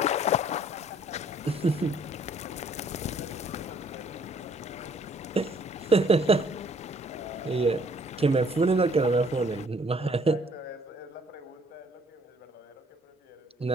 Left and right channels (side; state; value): both; normal; correlation 0.60